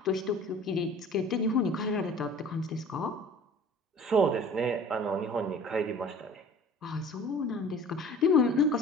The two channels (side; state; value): both; normal; correlation 0.46